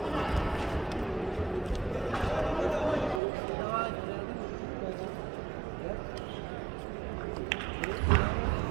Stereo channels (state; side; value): drops out; left; at 3.2 s